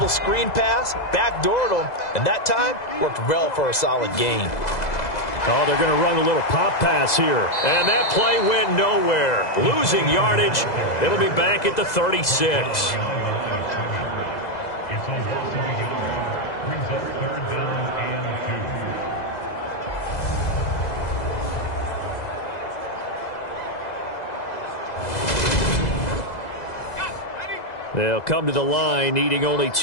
screen pass, backdoored them, and that time worked well for a solid gain. Oh, they're going to run a little pop pass here. And that play went nowhere. Losing yardage. It'll be back at the 36. They'll come to the line, needing only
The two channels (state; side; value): late; right; 2.0 ms